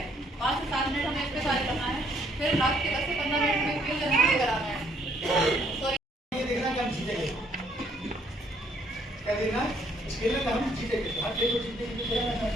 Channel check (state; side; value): normal; both; correlation 0.67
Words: 5 से 7 मिनट हमें इस पर कार्य करना है। फिर लास्ट के 10 से 15 मिनट में खेल जल्दी कराना है। ये देखना कि हम जीतेंगे, क्या देखना इस खेल में हम जीतेंगे। हर खेल को जीतने के लिए